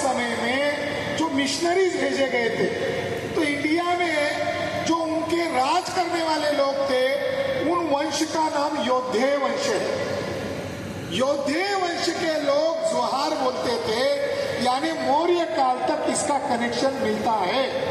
में जो मिशनरीज भेजे गए थे, तो इंडिया में जो उनके राज करने वाले लोग थे उन वंश का नाम योद्धेय वंश है। योद्धेय वंश के लोग जोहार बोलते थे, यानी मौर्य काल तक इसका कनेक्शन मिलता है।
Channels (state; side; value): identical; both; correlation 1.00